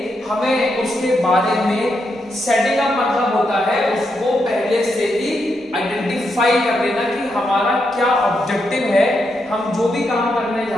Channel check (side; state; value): both; normal; correlation 0.82